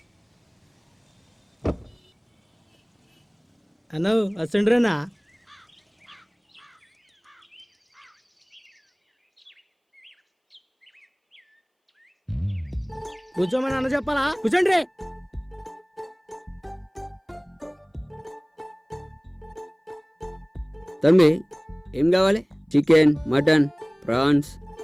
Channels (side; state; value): both; identical; correlation 1.00